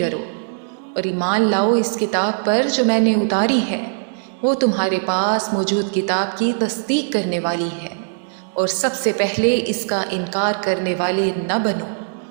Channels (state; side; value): silent; left; digital silence